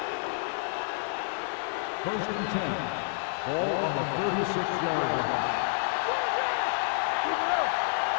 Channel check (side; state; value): right; silent; 58 dB below the other